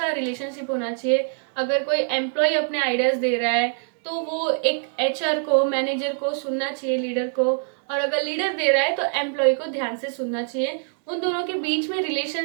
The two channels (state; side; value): silent; left; 63 dB below the other